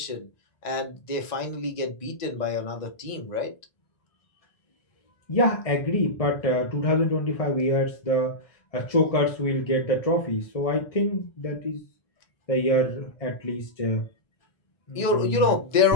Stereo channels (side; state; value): right; late; 1.9 ms